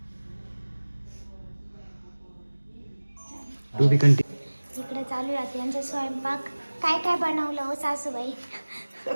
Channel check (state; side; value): inverted; both; correlation -1.00